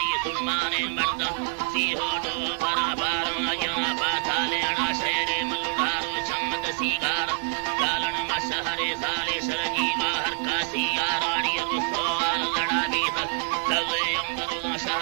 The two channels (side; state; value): left; silent; 61 dB below the other